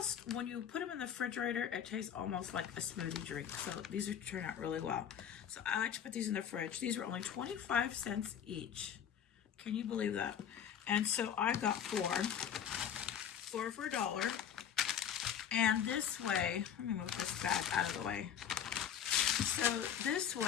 when you put them in the refrigerator, it tastes almost like a smoothie drink. So these are turn out really well. So I like to put these in the fridge. These were only 25 cents each. Can you believe that? And so I got four for $1. And this way, let me move this bag out of the way. So this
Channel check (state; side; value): quieter; right; 8.8 dB